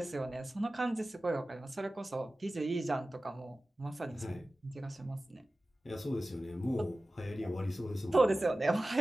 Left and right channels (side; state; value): both; normal; correlation 0.96